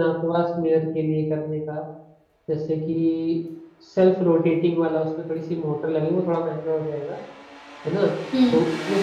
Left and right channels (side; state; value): both; identical; correlation 1.00